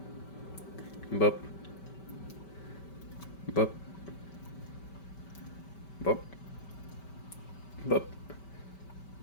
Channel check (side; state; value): right; late; 5.2 ms